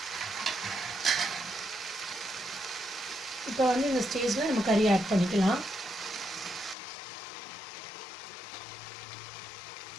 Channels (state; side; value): drops out; right; at 6.8 s